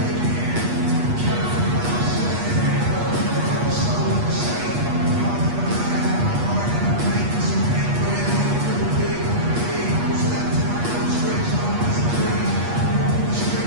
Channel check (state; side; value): late; left; 8.3 ms